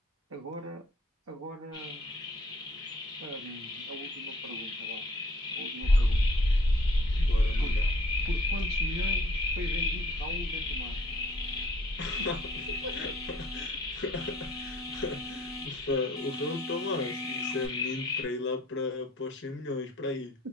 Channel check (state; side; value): normal; both; correlation 0.58